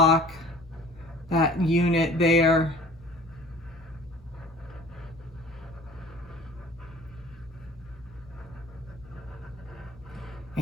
that unit there.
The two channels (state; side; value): normal; both; correlation 0.47